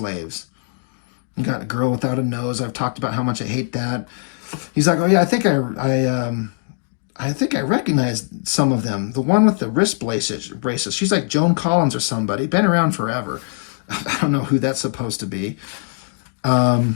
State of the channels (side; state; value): right; silent; digital silence